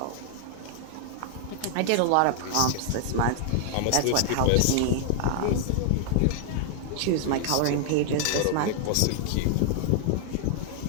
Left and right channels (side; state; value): both; different; correlation -0.01